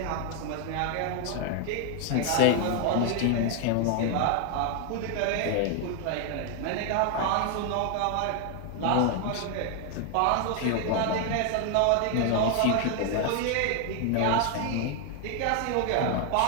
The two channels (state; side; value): different; both; correlation 0.00